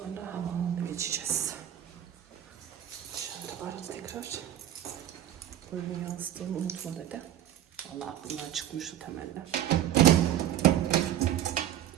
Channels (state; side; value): quieter; left; 11.5 dB